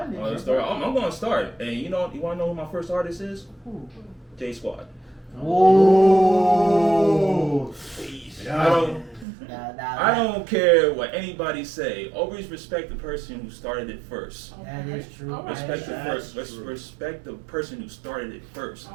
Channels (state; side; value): drops out; left; at 9.2 s